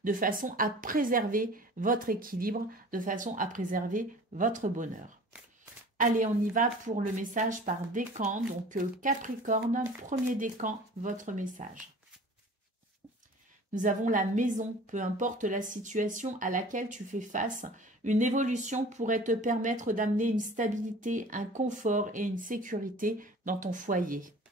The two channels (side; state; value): both; normal; correlation 0.43